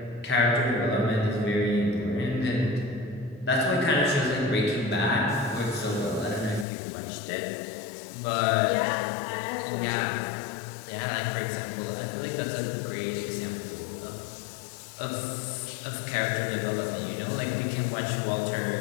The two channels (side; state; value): right; drops out; at 6.7 s